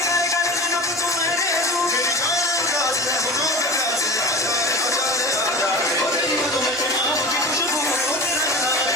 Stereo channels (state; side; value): normal; both; correlation 0.33